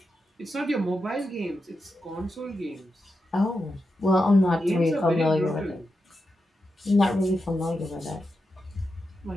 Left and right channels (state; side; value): normal; both; correlation 0.88